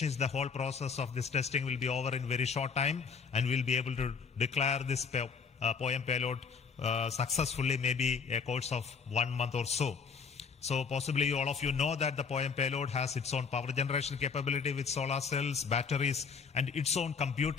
is the whole process of this testing will be over in very short time, and we'll be able to declare this POEM payload successfully, maybe a course of 1 month or so. So possibly all of you know that the POEM payload has its own power generation capability with solar cells, batteries, and its own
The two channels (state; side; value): quieter; right; 5.7 dB